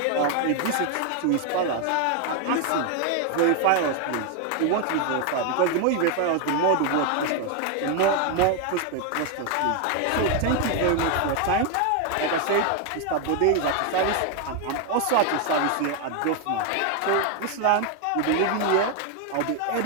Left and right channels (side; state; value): both; different; correlation 0.01